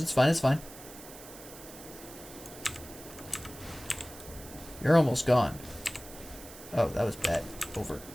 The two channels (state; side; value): noise; right; hiss, 16 dB below the sound